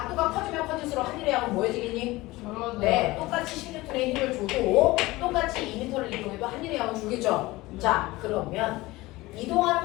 커지면 커질수록 하늘의 양은 뭐해지겠니? 네, 똑같이 16N의 힘을 줘도 똑같이 2m를 이동해도 하늘의 양은 줄겠죠? 자, 그러면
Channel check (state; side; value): quieter; right; 19.9 dB